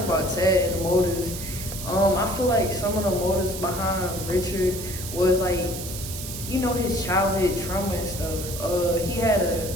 about Ted and the motives. I feel like some of the motives behind Richard was his childhood trauma and stuff.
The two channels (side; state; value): right; noise; hiss, 9 dB below the sound